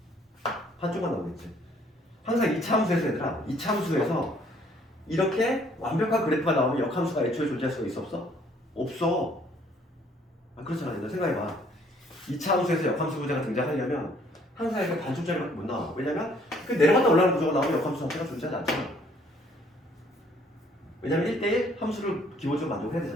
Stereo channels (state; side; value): normal; both; correlation 0.62